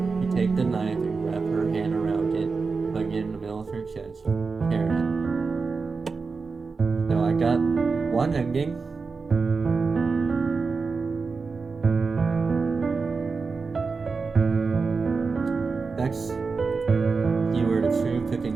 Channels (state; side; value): quieter; left; 4.6 dB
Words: You take the knife and wrap her hand around it, putting it in the middle of her chest. Karen. So I got one ending. Next, you were the true cooking